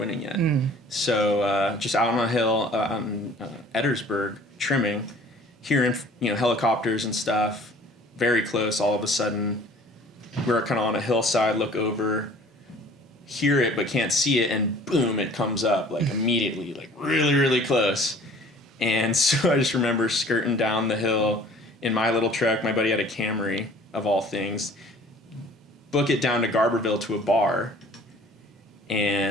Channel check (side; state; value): both; normal; correlation 0.50